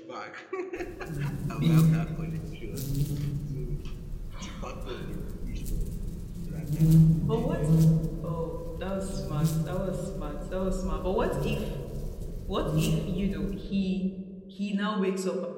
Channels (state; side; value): identical; both; correlation 1.00